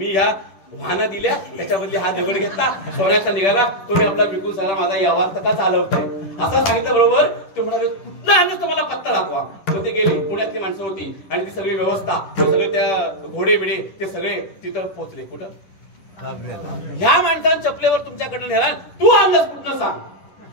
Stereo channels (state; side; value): late; right; 10 ms